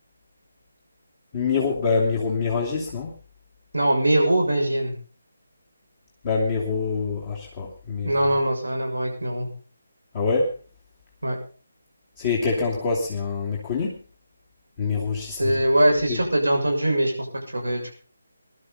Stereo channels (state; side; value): inverted; both; correlation -0.83